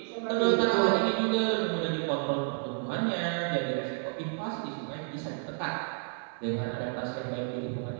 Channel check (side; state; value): left; silent; 57 dB below the other